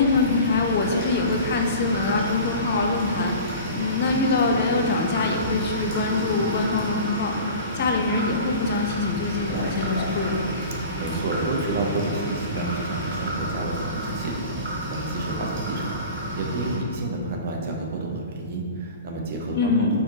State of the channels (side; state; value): both; inverted; correlation -0.37